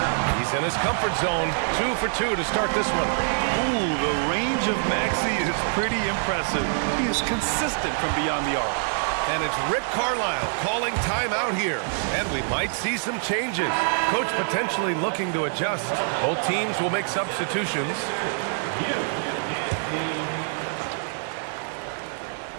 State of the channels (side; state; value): left; silent; digital silence